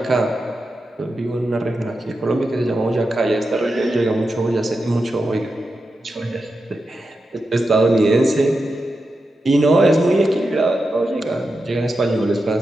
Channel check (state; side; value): normal; both; correlation 0.89